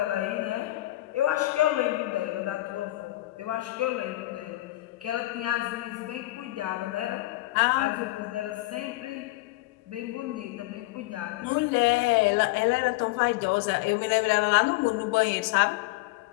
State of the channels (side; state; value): right; quieter; 18.6 dB